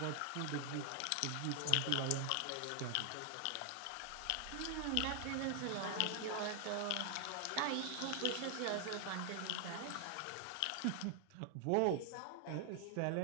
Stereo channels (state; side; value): different; both; correlation 0.00